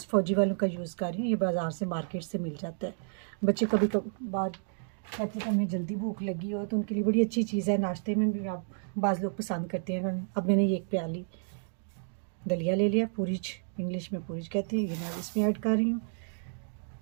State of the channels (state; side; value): silent; left; digital silence